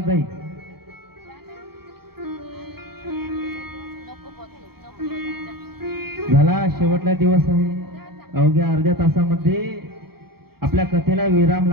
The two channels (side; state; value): left; late; 0.95 ms